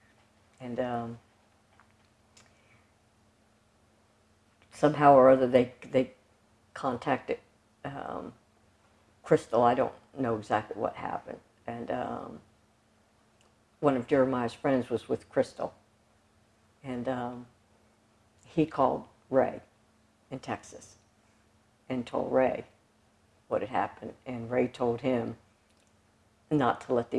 And somehow or other they contacted Crystal. I don't know exactly what happened. And one of Jeremiah's friends was with Crystal. And he called Ray in Texas and told Ray what had happened. And Ray told him not to let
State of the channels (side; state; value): both; identical; correlation 1.00